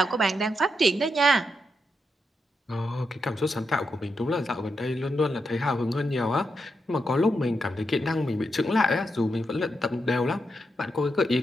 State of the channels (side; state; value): both; normal; correlation 0.84